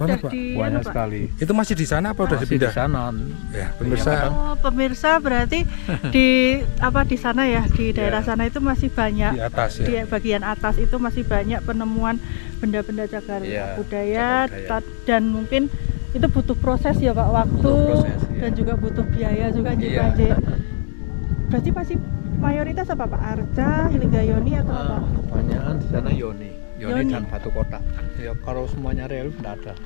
banget, sudah Pak. di Banyak Pak? sekali. Itu masih di sana apa udah Masih di dipindah? sana. Ya, pemirsa. Iya, Oh, pemirsa berarti di sana ya, di daerah Iya. sana itu masih banyak Di atas di ya. bagian atas itu masih banyak penemuan benda-benda cagar Iya, budaya, cagar budaya. dan mungkin itu butuh proses ya Pak, waktu Butuh proses, iya. dan juga butuh biaya juga Nji, Iya. Pak Nji. Berarti masih mayoritas apa Pak? Arca, Linggayoni atau apa? Kebanyakan di sana yoni. Yoni Yoni. dan batu kotak. Ya kalau semuanya relief tidak ada.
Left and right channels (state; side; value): silent; right; digital silence